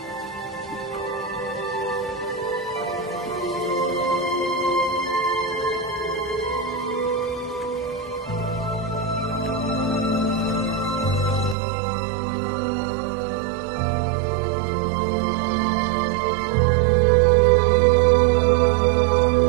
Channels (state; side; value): drops out; left; at 11.6 s